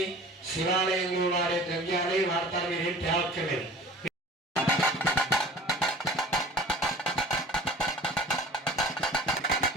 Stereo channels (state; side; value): normal; both; correlation 0.44